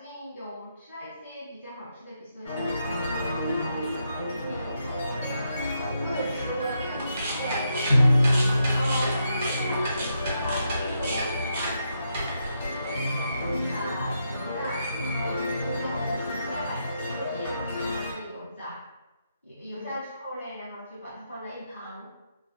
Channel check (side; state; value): both; inverted; correlation -0.81